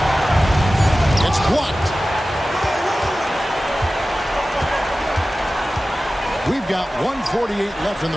It's blocked. We've got 1:48 left in the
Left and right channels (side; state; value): both; normal; correlation 0.96